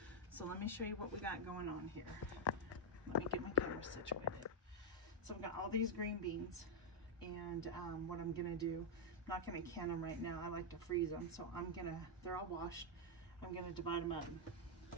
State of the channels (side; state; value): both; normal; correlation -0.02